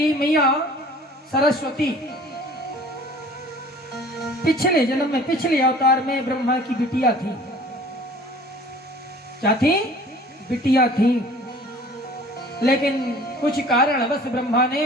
मैया सरस्वती पिछले जन्म में, पिछले अवतार में ब्रह्मा की बिटिया थी। क्या थी? बिटिया थी। लेकिन कुछ कारणवश ब्रह्मा ने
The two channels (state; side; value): normal; both; correlation 0.48